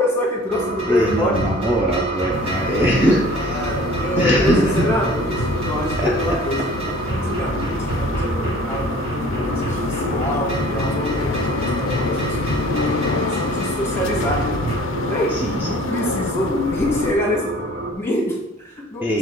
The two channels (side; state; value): both; normal; correlation 0.49